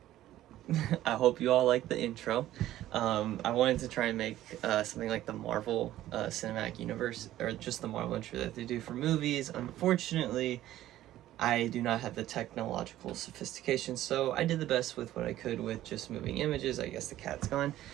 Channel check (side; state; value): left; quieter; 13.9 dB